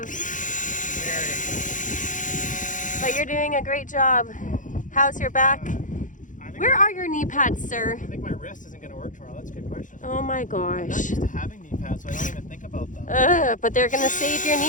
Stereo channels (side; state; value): right; late; 0.37 ms